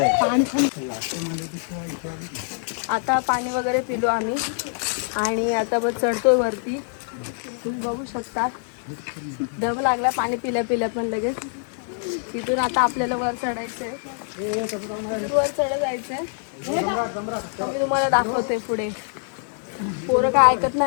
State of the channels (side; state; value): right; silent; 60 dB below the other